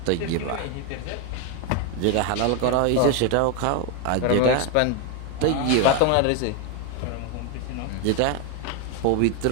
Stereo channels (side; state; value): both; different; correlation 0.01